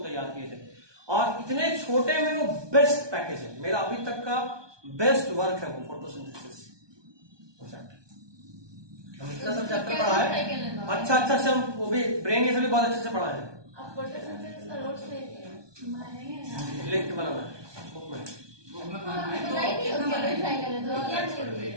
तैयार किए थे। और इतने छोटे में वो बेस्ट पैकेज है, मेरा अभी तक का बेस्ट वर्क है वो फोटोसिंथेसिस। हम इतना सब चैप्टर पढ़ा है, अच्छा से हम वो भी ब्रेन ये सभी बहुत अच्छे से पढ़ा है। लिख के बनाना है बुक में।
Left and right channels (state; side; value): late; left; 1.2 ms